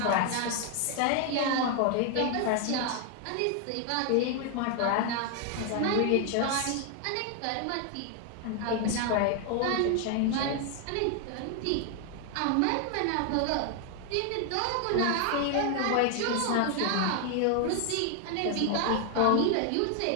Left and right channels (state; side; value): different; both; correlation 0.00